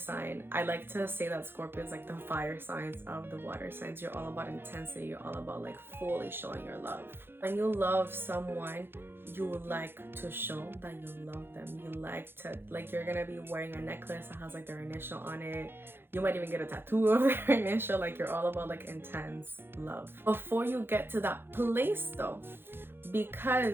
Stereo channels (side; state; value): left; late; 0.10 ms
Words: I like to say that Scorpio is like the fire signs of the water signs. You're all about intensity. You're all about like fully showing your love. When you love someone, you like to show that you love them. You like to, like, you're gonna be wearing a necklace that has like their initial on it. You might even get a tattoo of their initial. Like, you're all about like intense love. Before you get to that place though,